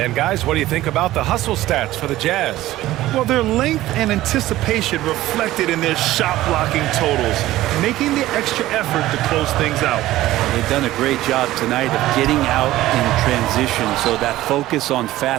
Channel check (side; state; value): left; quieter; 15.7 dB